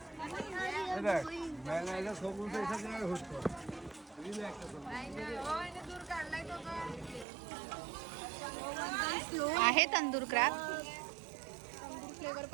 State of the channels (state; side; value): drops out; left; at 7.2 s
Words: आहे तंदूर क्रॅब. फ्लेवर